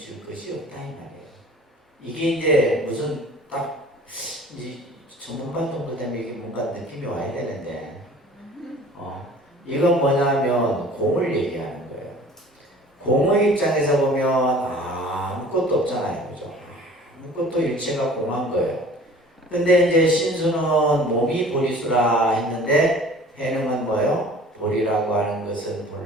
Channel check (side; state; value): both; normal; correlation 0.47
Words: 것이 없다 이 말이에요. 이게 이제 무슨 딱 이제 전문가 정도 되면 이게 뭔가 느낌이 와야 되는데, 이건 뭐냐면 공을 얘기하는 거예요. 공의 입장에서 보면 아무것도 없잖아요, 그죠? 아무것도 일체가 공한 거예요. 근데 이제 신수는 몸이 보리수라 했는데 해능은 뭐예요? 보리라고 하는 것은